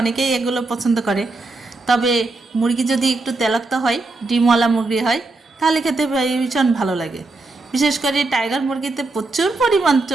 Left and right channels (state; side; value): quieter; left; 3.2 dB